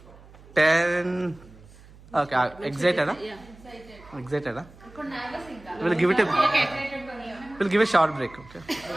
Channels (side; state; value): right; noise; hum, 22 dB below the sound